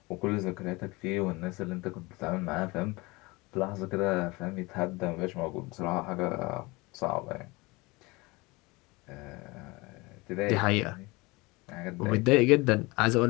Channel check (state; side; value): quieter; right; 24.0 dB